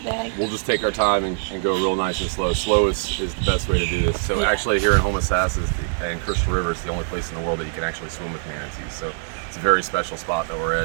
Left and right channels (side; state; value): left; silent; 64 dB below the other